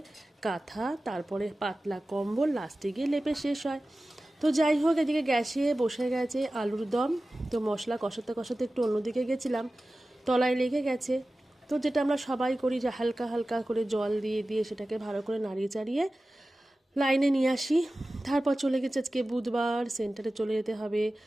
কাঁথা, তারপরে পাতলা কম্বল, লাস্টে গিয়ে লেপে শেষ হয়। তো যাই হোক, এদিকে গ্যাসে বসে গেছে আলুর দম। তো মশলা কষাতে কষাতে একটু অন্যদিকে গেছিলাম, তলায় লেগে গেছে। তো যেটা আমরা সবাই করি, যে হালকা হালকা করে জল দিয়ে দিয়ে সেটাকে ভালো করে নাড়িয়ে চাড়িয়ে লাইনে নিয়ে আসি। তারপর চলে গেছে আজকে বুধবার, সেন্টারে চলে যেতে হবে।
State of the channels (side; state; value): both; normal; correlation 0.96